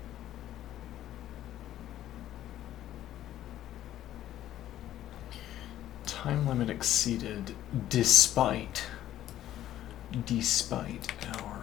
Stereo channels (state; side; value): quieter; right; 12.7 dB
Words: Time limit exceeded despite